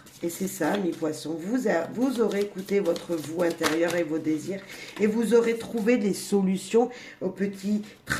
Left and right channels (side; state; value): both; identical; correlation 1.00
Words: Et c'est ça, mes poissons. Vous aurez écouté votre vous intérieur et vos désirs. Et vous aurez trouvé des solutions aux petits